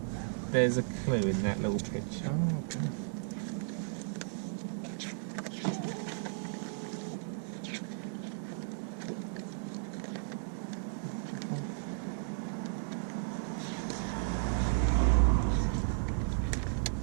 a clue in that little picture. Oh, okay.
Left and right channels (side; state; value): left; silent; digital silence